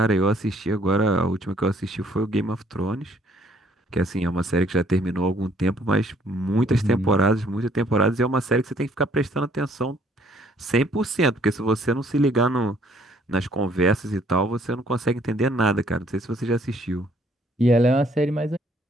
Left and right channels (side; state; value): both; normal; correlation 0.63